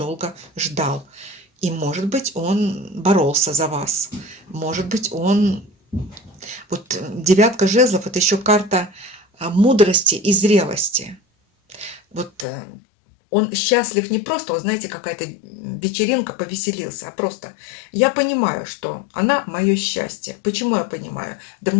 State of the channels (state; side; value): drops out; right; at 12.5 s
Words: ждал. И, может быть, он боролся за вас. Может быть, он... Вот 9 жезлов – это еще карта мудрости и зрелости. Вот Он счастлив не просто, вот знаете, какая-то вечеринка, повеселился, а просто я понимаю, что она мое счастье. Почему я понимаю? Да